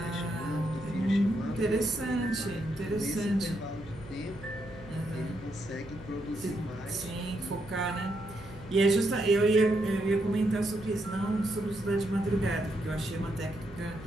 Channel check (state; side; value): noise; right; hum, 17 dB below the sound